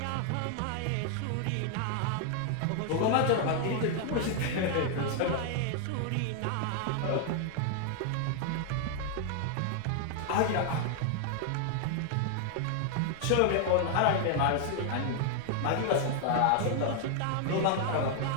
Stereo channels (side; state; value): both; different; correlation 0.00